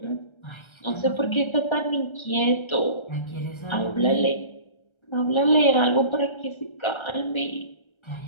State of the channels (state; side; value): late; right; 1.3 ms